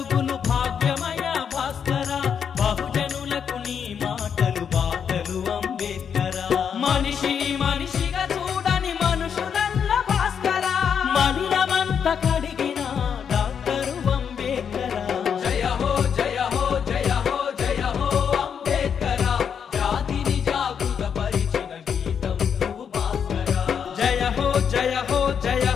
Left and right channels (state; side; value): quieter; right; 7.4 dB